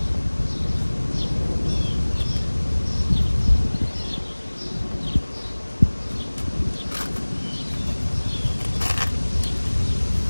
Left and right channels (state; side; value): inverted; both; correlation -1.00